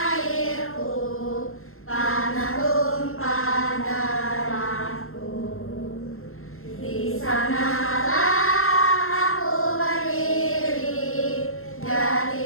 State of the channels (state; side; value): late; right; 0.62 ms